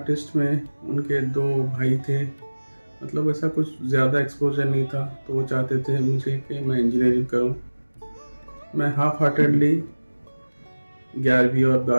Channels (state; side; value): inverted; both; correlation -1.00